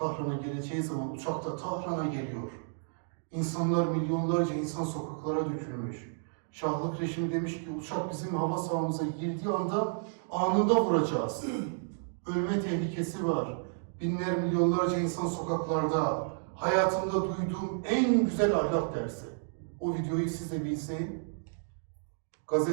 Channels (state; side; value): silent; left; digital silence